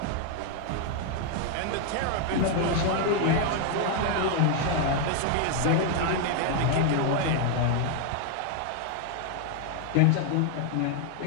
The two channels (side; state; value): both; different; correlation 0.00